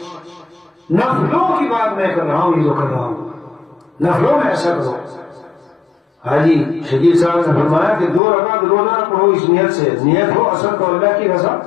نفلوں کی بات میں کر رہا ہوں، یہ جو کر رہا ہوں نفلوں میں ایسا کرو. حاجی شکیل صاحب نے فرمایا کہ 2 رکعت روزانہ پڑھو اس نیت سے. نیت ہو اصل تو اللہ کی رضا،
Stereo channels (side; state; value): right; drops out; at 8.2 s